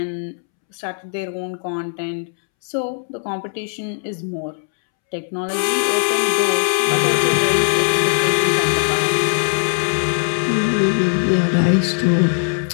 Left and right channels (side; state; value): right; silent; 66 dB below the other